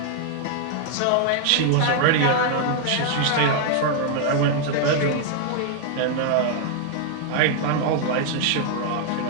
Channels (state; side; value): different; both; correlation 0.00